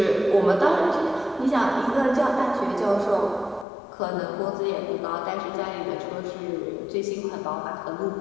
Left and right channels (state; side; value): drops out; right; at 3.7 s